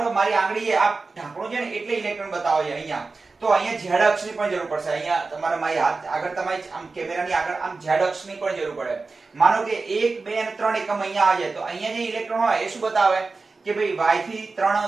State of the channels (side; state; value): left; quieter; 3.9 dB